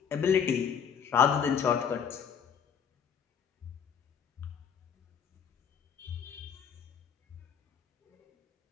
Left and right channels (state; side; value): quieter; right; 7.4 dB